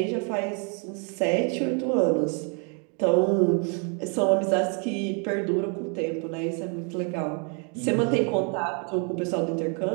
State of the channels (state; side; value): quieter; left; 38.4 dB